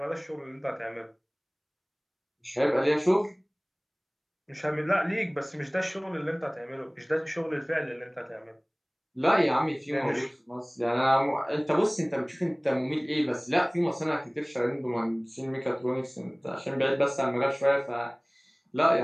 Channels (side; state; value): both; identical; correlation 1.00